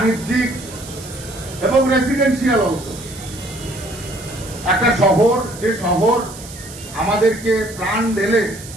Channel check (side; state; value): right; noise; hiss, 15 dB below the sound